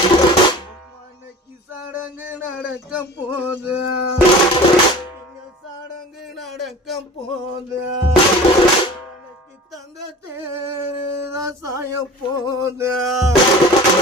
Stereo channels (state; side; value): normal; both; correlation 0.40